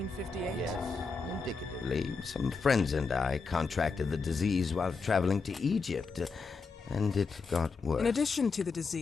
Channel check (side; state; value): right; quieter; 4.6 dB